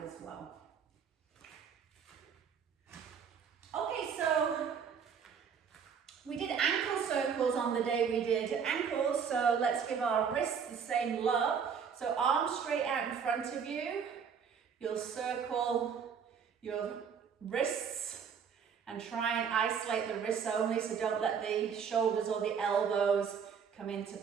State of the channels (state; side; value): quieter; left; 6.9 dB